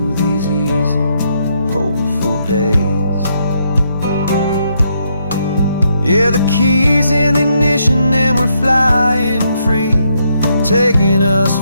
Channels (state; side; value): inverted; both; correlation -0.76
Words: these easy, hopeful days. Yeah, the keys in the ignition and we're flying free, taking us